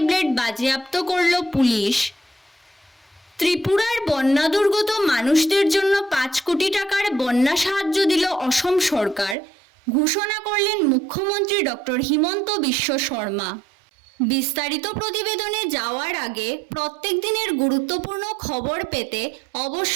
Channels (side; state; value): left; drops out; at 9.3 s